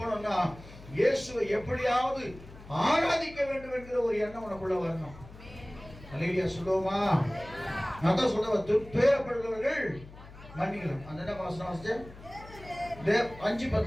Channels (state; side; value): noise; left; hum, 18 dB below the sound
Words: இயேசுவை எப்படியாவது ஆராதிக்க வேண்டும் என்கிற ஒரு எண்ணம் உனக்குள்ள வரணும். ஹல்லேலூயா சொல்லுவோமா? நான் தான் சொல்லுவேன், துன்பப்படுகிறவர்கள் மன்னிக்கலாம். அந்த என்ன வாசனம் வாசிச்ச?